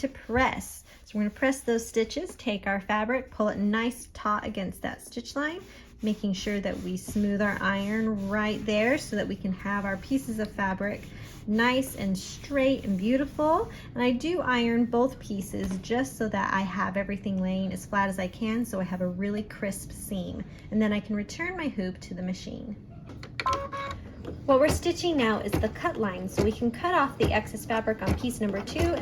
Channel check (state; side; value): identical; both; correlation 1.00